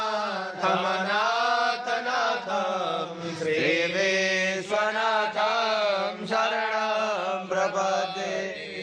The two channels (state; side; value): identical; both; correlation 1.00